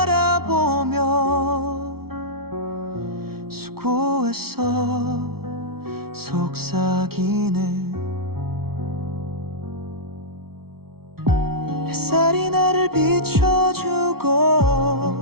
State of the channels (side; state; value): left; late; 0.95 ms